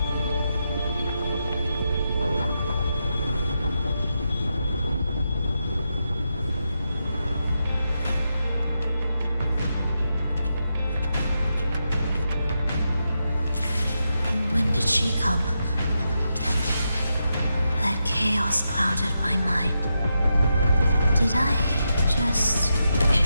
When did she come? That chaos clouded my mind. Did I just...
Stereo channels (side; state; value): both; inverted; correlation -0.86